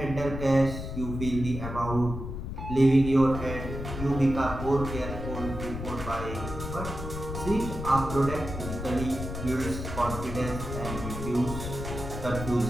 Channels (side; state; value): left; noise; rumble, 7 dB below the sound